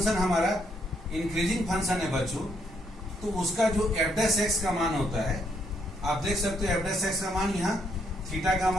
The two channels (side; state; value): both; normal; correlation 0.73